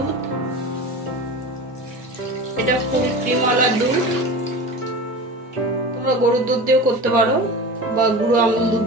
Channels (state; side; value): normal; both; correlation 0.32